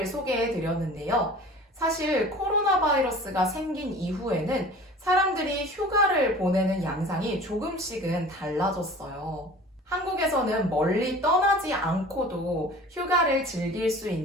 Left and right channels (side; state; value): both; normal; correlation 0.42